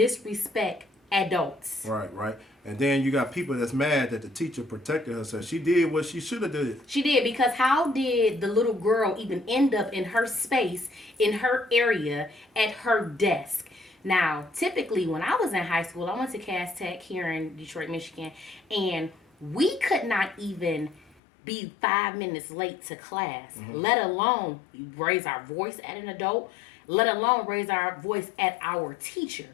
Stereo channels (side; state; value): right; drops out; at 21.2 s